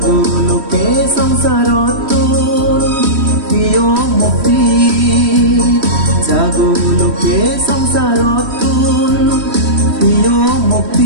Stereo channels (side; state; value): left; late; 3.1 ms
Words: সংসারতুন প্রিয় মুক্তি জাগলোকে সংসারতুন প্রিয়